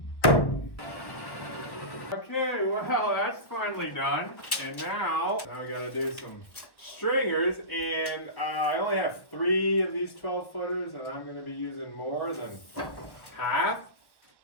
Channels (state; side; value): late; right; 1.1 ms